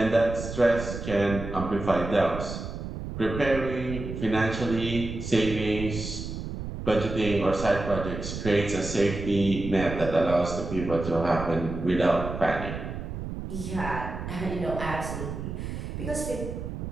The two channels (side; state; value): right; noise; rumble, 7 dB below the sound